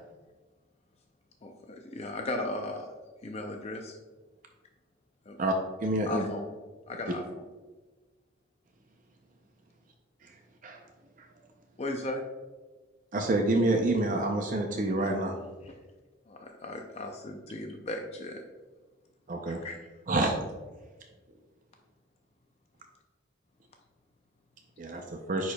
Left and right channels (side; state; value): both; normal; correlation 0.37